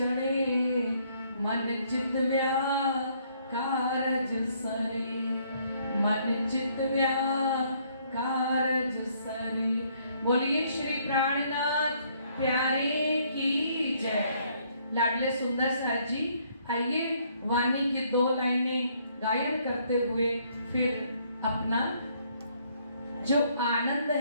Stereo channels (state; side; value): inverted; both; correlation -0.67